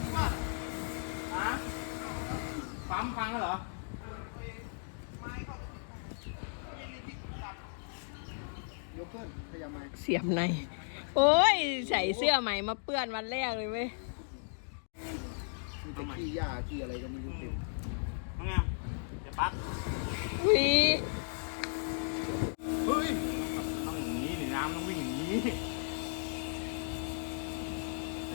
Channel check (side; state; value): right; silent; digital silence